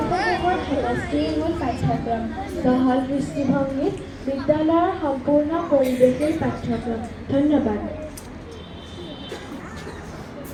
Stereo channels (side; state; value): both; identical; correlation 1.00